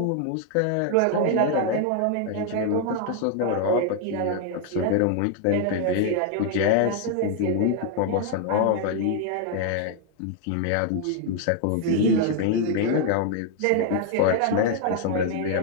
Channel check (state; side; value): different; both; correlation 0.00